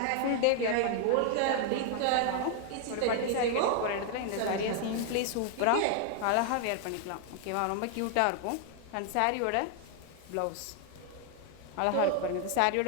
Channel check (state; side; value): different; both; correlation 0.00